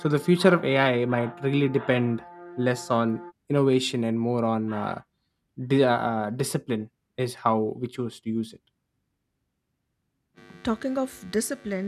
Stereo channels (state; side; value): identical; both; correlation 1.00